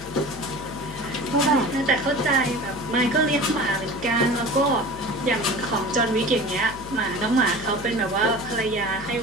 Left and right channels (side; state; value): left; noise; hum, 15 dB below the sound